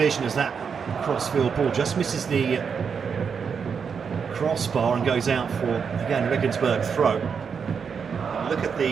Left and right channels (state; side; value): quieter; left; 6.3 dB